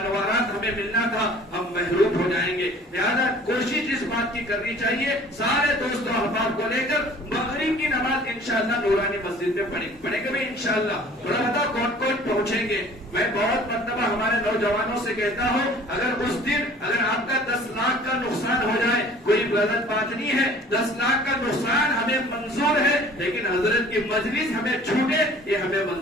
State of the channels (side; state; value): both; normal; correlation 0.50